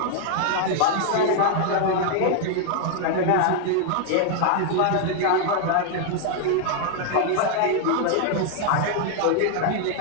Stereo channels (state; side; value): different; both; correlation 0.00